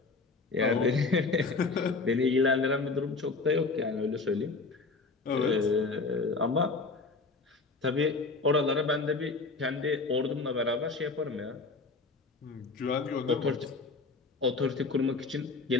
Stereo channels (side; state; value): right; quieter; 4.0 dB